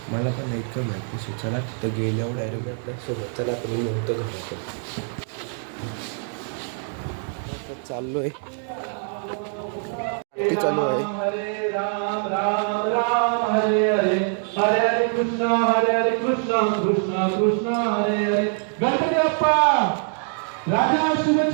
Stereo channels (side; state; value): left; silent; 56 dB below the other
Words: मला पण नाही इतकं माहिती. सो चला तिथं गेल्यावर डायरेक्ट आपल्यासोबत चला पण मी होतं घराकडे चाललो आहे. आरती चालू आहे. हरे हरे कृष्णा कृष्णा कृष्णा हरे हरे. गणपती बाप्पा राजा